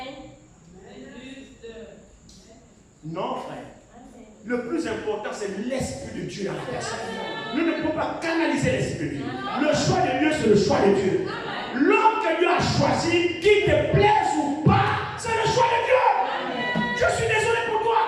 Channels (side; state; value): both; identical; correlation 1.00